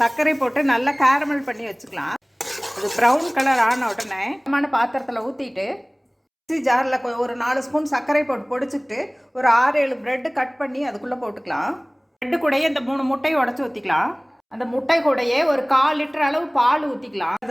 சர்க்கரை போட்டு நல்லா கேரமல் பண்ணி வச்சுக்கலாம். அது ப்ரௌன் கலர் ஆன உடனே பாத்திரத்தில் ஊற்றிட்டு மிக்ஸி ஜாரில் ஒரு 4 ஸ்பூன் சர்க்கரை போட்டு பொடிச்சுக்கிட்டு ஒரு 6-7 பிரெட்டு கட் பண்ணி அதுக்குள்ளே போட்டுக்கலாம். பிரெட்டு கூடயே இந்த 3 முட்டையை உடச்சி ஊற்றிக்கலாம். அந்த முட்டை கூடயே ஒரு 1/4 லிட்டர் அளவு பால் ஊற்றிக்கலாம்.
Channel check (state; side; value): identical; both; correlation 1.00